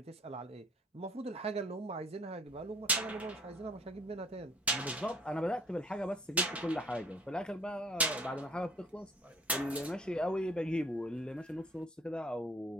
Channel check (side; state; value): both; normal; correlation 0.57